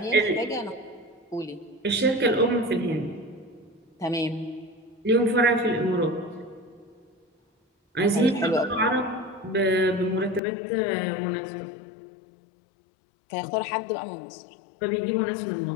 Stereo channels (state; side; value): drops out; right; at 10.4 s